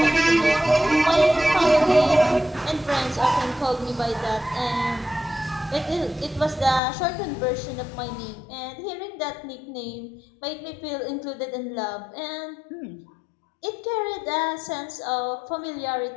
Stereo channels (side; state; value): right; drops out; at 6.8 s